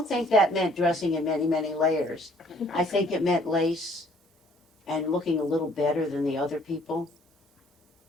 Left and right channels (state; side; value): normal; both; correlation 0.60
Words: think that meant dressing in many, many layers. I think it meant lace and looking a little better than the other people,